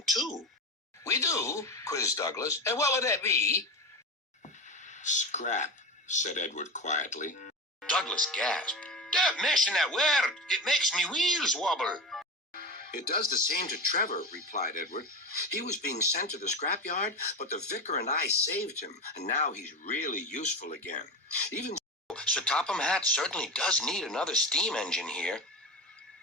too." "We do?" quizzed Douglas. "And what would that be?" "Scrap," said Edward quietly. Douglas gasped. "Don't mention that word. It makes me wheels wobble." "It does the same to Trevor," replied Edward. "He was being sent to the scrapyard, but the vicar and I saved him, and now he's really useful again. Even so, Sir Topham Hatt certainly does need another steam engine here."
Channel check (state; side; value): normal; both; correlation 0.23